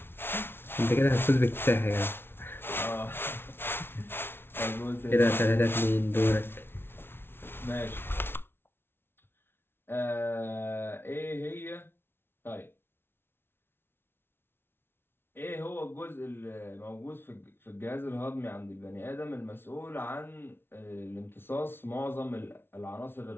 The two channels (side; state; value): right; late; 0.11 ms